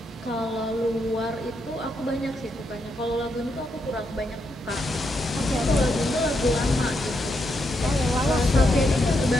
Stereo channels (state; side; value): normal; both; correlation 0.80